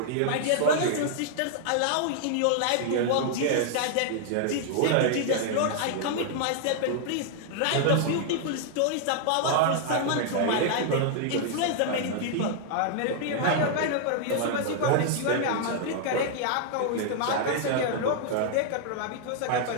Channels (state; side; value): different; both; correlation -0.01